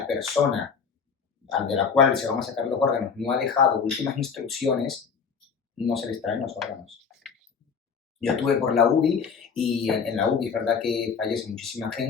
persona de la cual se van a sacar los órganos no ha dejado últimas instrucciones, no se les traen los órganos. Yo estuve por la UBI y en la UBI es verdad que fallece muchísima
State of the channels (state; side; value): quieter; right; 6.0 dB